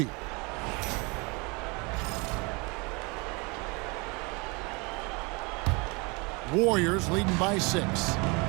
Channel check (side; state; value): left; quieter; 28.6 dB